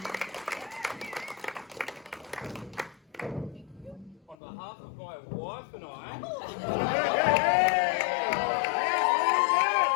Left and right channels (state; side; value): drops out; right; at 4.4 s